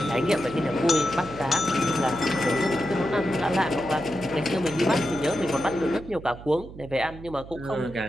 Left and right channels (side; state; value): right; noise; hum, 15 dB below the sound